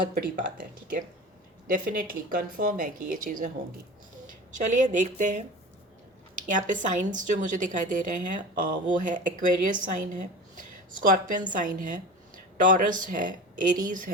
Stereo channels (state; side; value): normal; both; correlation 0.33